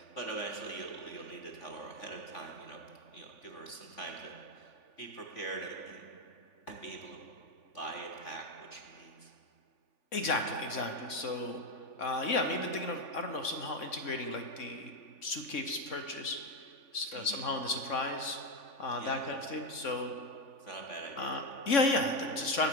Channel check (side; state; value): right; late; 3.6 ms